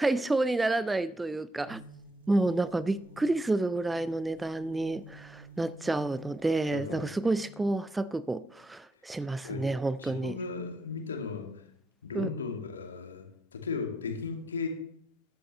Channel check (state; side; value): normal; both; correlation 0.79